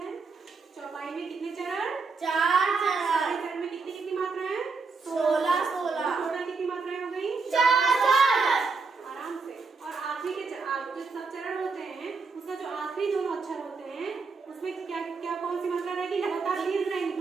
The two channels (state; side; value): quieter; left; 4.5 dB